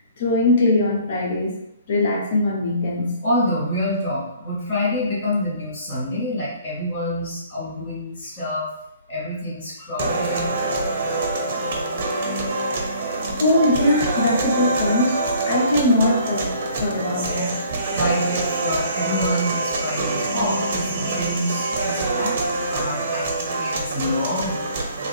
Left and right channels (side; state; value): both; inverted; correlation -0.56